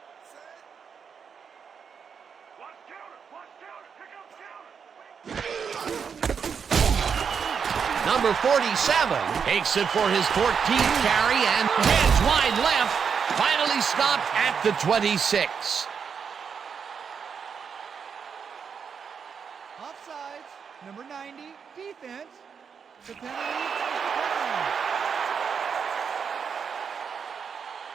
Number 47 takes it for his 14th carry and heads wide left. Finally stopped at the 26. Offsides. Number 90, defense. The penalty is declined.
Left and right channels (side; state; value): left; quieter; 6.5 dB